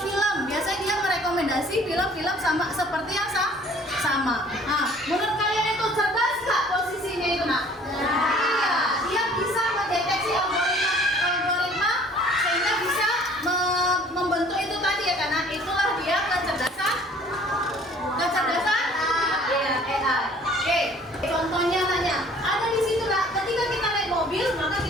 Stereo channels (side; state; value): both; normal; correlation 0.54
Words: film, biasanya dia merekomendasi film-film sama seperti yang sama. Nah, menurut kalian itu cerdas nggak posisinya itu Nak? Iya, dia bisa mendeteksi algoritma sehingga bisa membentuk itu tadi ya, karena itulah dia kecerdasan. Iya, AI. Oke, contohnya nanya, ada di situ Nak, ketika kita naik mobil, maka